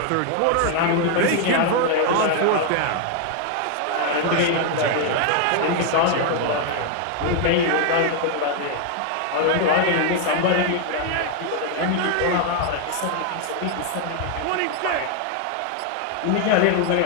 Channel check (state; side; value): different; both; correlation 0.00